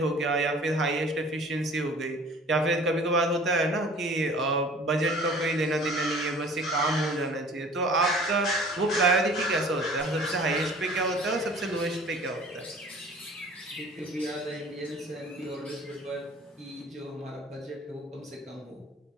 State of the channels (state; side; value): normal; both; correlation 0.48